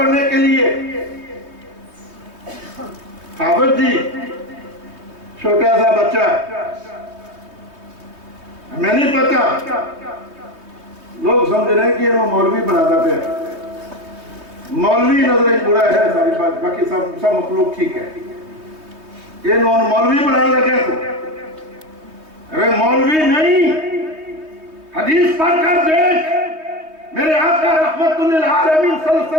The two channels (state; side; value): late; left; 3.2 ms